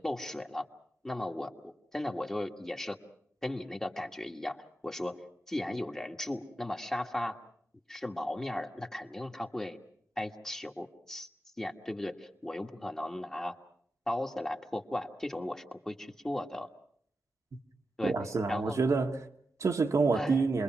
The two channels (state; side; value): normal; both; correlation 0.89